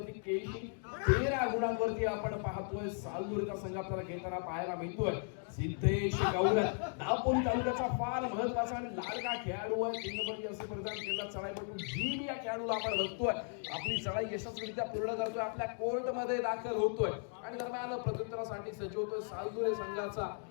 केशी 13 गुणांवरती आपण पाहतोय सालूरचा संघ आपल्याला खेळताना पाहायला मिळतोय. सिद्धेश गौर दापोली तालुक्याचा फार महत्वाचा आणि लाडका खेळाडू आहे. 3 नंबरची असे प्रदान केला चढाईपटू जीन या खेळाडूला आपण बघतोय आपली चढाई यशस्वीरित्या पूर्ण करतोय आपल्या कोर्ट मध्ये दाखल होतोय आणि दरम्यान प्रत्युत्तरासाठी सज्ज होतोय सालूर संघाचा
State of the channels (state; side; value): silent; right; 53 dB below the other